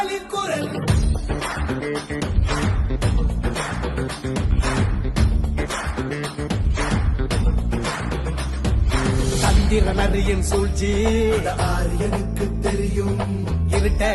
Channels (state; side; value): identical; both; correlation 1.00